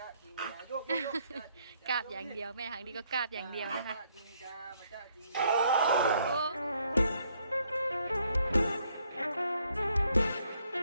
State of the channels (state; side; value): inverted; both; correlation -0.69